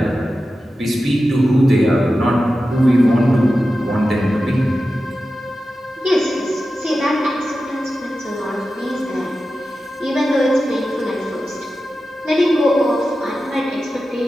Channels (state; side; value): normal; both; correlation 0.93